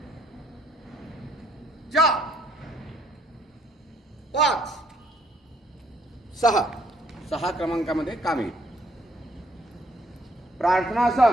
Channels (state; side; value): normal; both; correlation 0.67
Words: 4 5 6 क्रमांकामध्ये काम येईल.